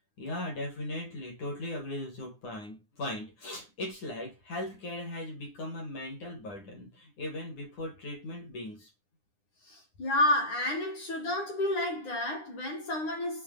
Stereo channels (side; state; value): right; late; 9.8 ms